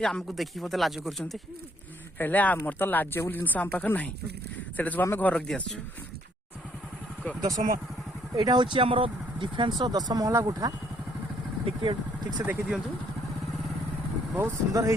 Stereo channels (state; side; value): normal; both; correlation 0.67